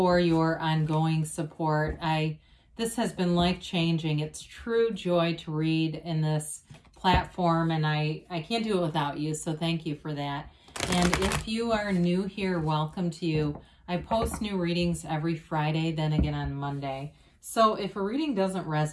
your ongoing support. This has been life-changing. It's true joy to read in this platform, and I can't do it without you, so thank you for that. And if you are new here, welcome to you. I post new readings every Friday, then again on Monday. So if a reading doesn't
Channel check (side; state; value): both; identical; correlation 1.00